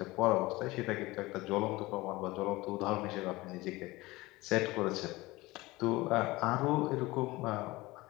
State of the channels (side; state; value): right; quieter; 20.5 dB